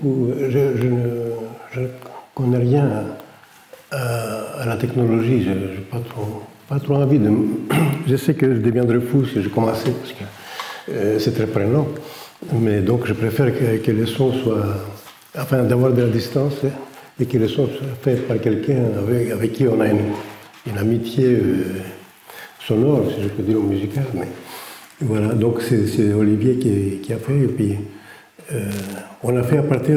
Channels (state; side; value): identical; both; correlation 1.00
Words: Je ne connais rien à la technologie. Je n'ai pas trop envie de... Je sais que je deviendrai fou si je commençais, parce que c'est très prenant. Mais donc je préfère que les sons soient... Enfin, d'avoir de la distance et que les sons soient faits par quelqu'un avec qui on a une amitié sonore, si je peux dire, musicale. Mais voilà, donc c'est Olivier qui a fait. Et puis, on a fait à